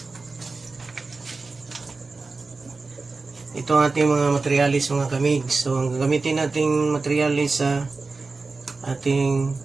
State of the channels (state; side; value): quieter; left; 3.9 dB